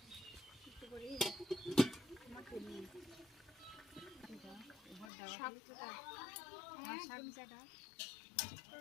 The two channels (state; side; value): drops out; right; at 5.1 s